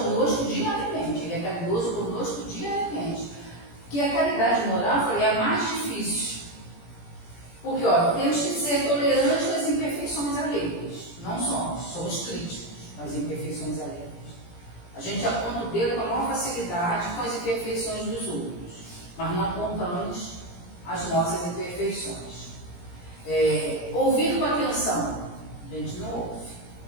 diariamente, ele é caridoso conosco diariamente. Que a caridade moral, eu falei, é a mais difícil. Porque, ó, temos que ser tolerantes com as imperfeições alheias. Não somos críticos às imperfeições alheias. A gente aponta o dedo com a maior facilidade com as imperfeições dos outros, mas não apontamos as nossas imperfeições. Ouvir com atenção, a gente não ouve.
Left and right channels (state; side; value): late; right; 17 ms